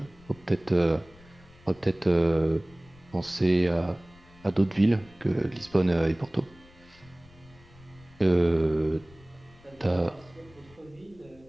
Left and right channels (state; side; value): noise; left; rumble, 25 dB below the sound